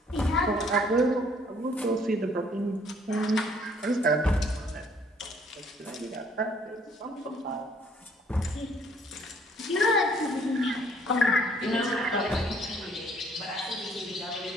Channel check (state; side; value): normal; both; correlation 0.62